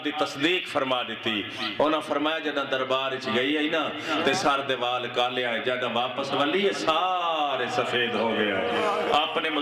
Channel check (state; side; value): identical; both; correlation 1.00